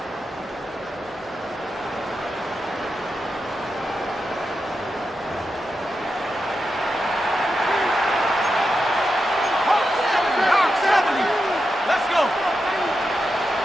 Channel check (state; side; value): normal; both; correlation 0.88